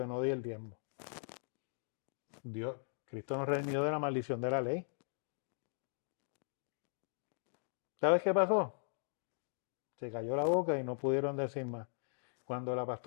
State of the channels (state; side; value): silent; right; digital silence